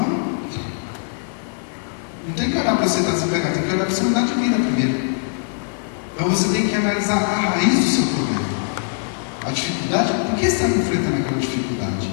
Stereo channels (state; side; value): silent; right; digital silence